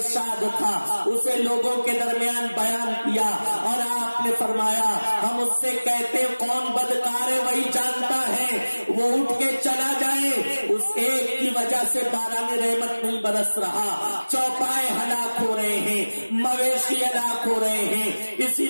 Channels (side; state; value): both; inverted; correlation -1.00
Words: تھا اسے لوگوں کے درمیان بیان کیا، اور آپ نے فرمایا، ہم اس سے کہتے کون بدکار ہے وہی جانتا ہے، وہ اٹھ کے چلا جائے۔ اس ایک کی وجہ سے باران رحمت نہیں برس رہا، چوپائے ہلاک ہو رہے ہیں، مویشی ہلاک ہو رہے ہیں، اسی